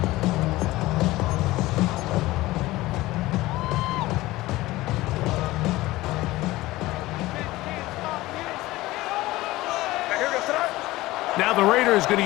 Now the Raiders going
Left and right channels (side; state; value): right; quieter; 18.3 dB